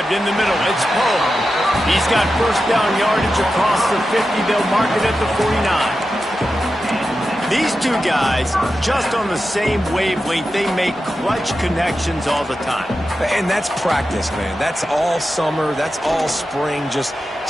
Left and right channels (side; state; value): both; normal; correlation 0.91